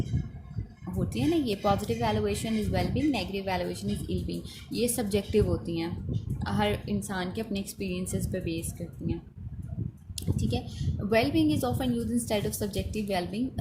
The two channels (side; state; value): both; identical; correlation 1.00